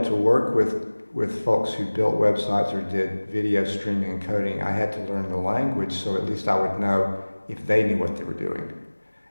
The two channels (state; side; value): inverted; both; correlation -1.00